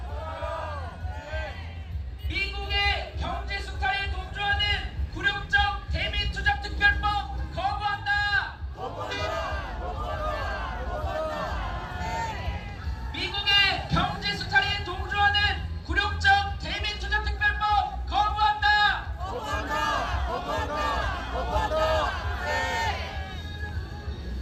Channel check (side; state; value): both; identical; correlation 1.00